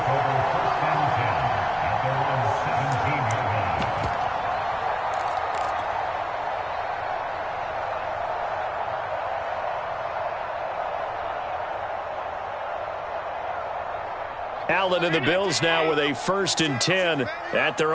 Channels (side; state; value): both; identical; correlation 1.00